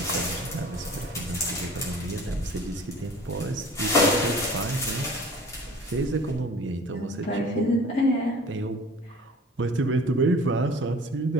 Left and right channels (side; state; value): both; normal; correlation 0.45